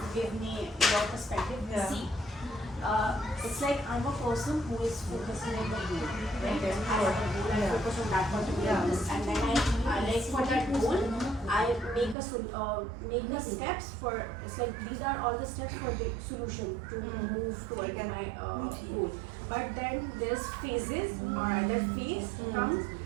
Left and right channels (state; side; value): drops out; left; at 12.2 s